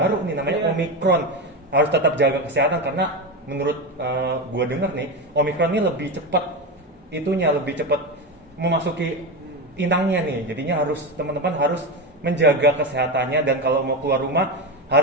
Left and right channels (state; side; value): normal; both; correlation 0.17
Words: nih namanya Iya. Omicron. Harus tetap jaga kesehatan karena menurut gua denger nih, Omicron ini lebih cepat memasuki inangnya nih. Jadinya teman-teman harus menjaga kesehatannya dan kalau mau keluar rumah